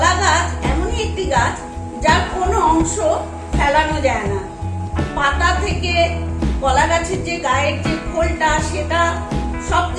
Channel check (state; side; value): identical; both; correlation 1.00